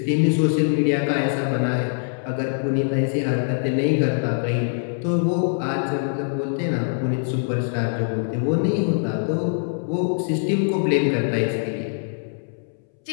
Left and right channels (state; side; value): silent; right; 63 dB below the other